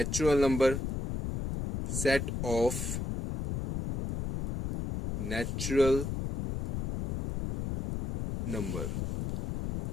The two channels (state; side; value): noise; left; rumble, 4 dB below the sound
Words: number, set of natural number.